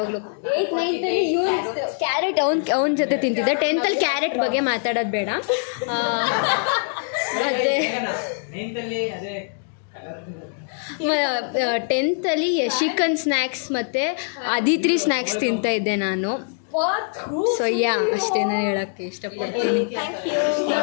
8th 9th ಕ್ಯಾರೆಟ್ ಅವನ ಜೊತೆ ತಿಂತಿದ್ದೆ. 10th ಕ್ಯಾರೆಟ್ ಬಗ್ಗೆ ಮಾತಾಡೋದು ಬೇಡ. ಮತ್ತು 10th ಯಶಿಕನ್ ಸ್ನ್ಯಾಕ್ಸ್ ಮತ್ತು ಅದಿತ್ರಿ ಸ್ನ್ಯಾಕ್ಸ್ ತಿಂತಾಯಿದ್ದೆ ನಾನು. ಸೊ ಅಷ್ಟೇ ನಾನು ಹೇಳೋಕ್ಕೆ ಇಷ್ಟಪಡ್ತೀನಿ.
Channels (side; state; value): right; silent; 59 dB below the other